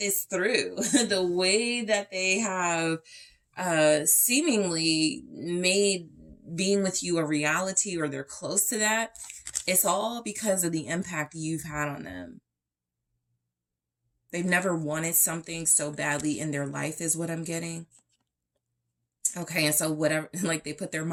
through, the way that they have seemingly made being with you a reality, or they're close to that. It's all because of the impact you've had on them. They've never wanted something so badly in their life is what I'm getting. Okay, and so whatever, like they put their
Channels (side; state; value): both; identical; correlation 1.00